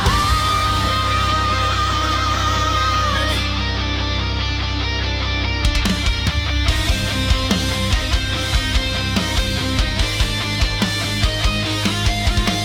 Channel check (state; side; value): identical; both; correlation 1.00